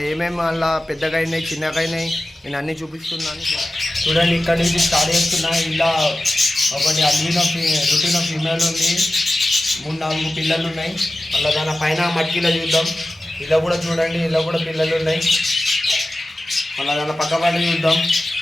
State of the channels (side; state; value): both; normal; correlation 0.94